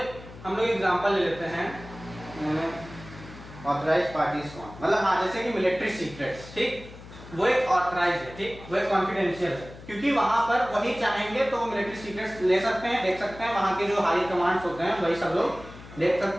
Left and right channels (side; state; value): left; noise; hum, 17 dB below the sound